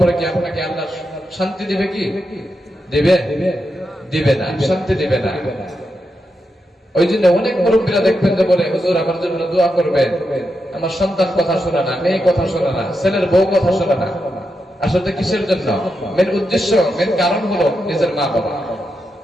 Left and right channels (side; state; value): both; normal; correlation 0.86